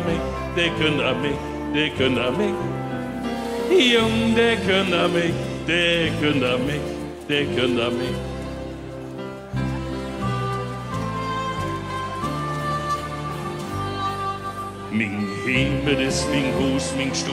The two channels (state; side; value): identical; both; correlation 1.00